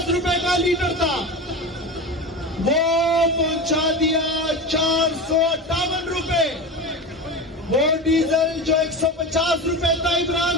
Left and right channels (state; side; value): normal; both; correlation 0.26